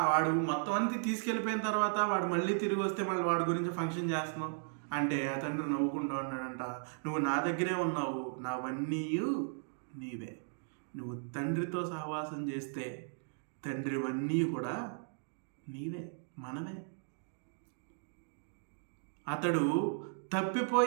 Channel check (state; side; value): silent; left; digital silence